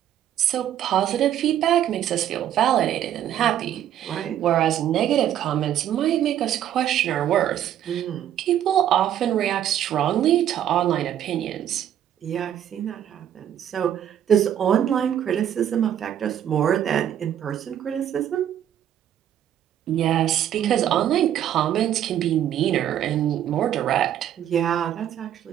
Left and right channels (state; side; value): quieter; left; 10.6 dB